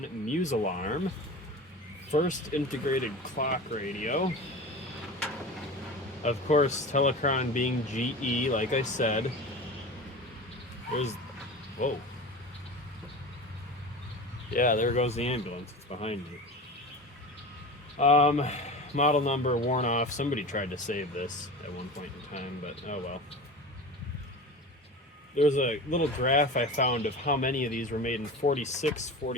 Musalarm. First integrated clock radio. Of course, Telecron being GE, like I said. There's... Whoa. Yeah, there goes the ambulance. It's behind me. Model number worn off. Somebody tried to save this at one point in time, but oh well. There was a little graph I found of how many of these were made in 46,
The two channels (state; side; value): normal; both; correlation 0.32